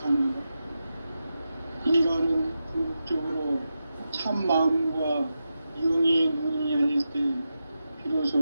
인간은 궁극적으로 참 마음과 영의 눈이 열릴 때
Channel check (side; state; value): both; inverted; correlation -0.90